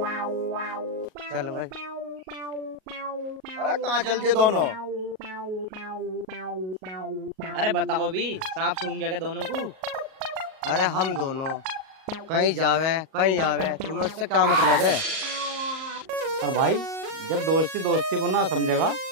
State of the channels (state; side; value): late; left; 38 ms